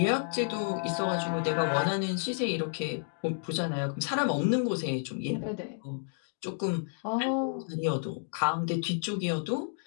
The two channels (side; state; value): right; silent; digital silence